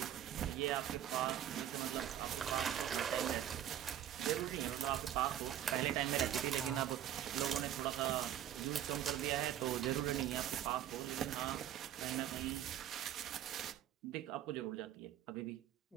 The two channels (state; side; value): quieter; left; 11.1 dB